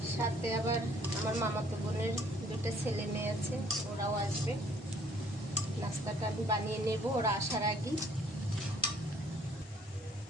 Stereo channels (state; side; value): normal; both; correlation 0.60